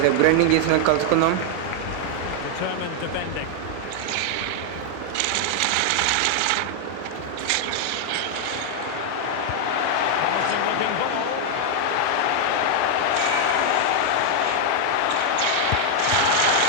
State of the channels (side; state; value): both; different; correlation 0.00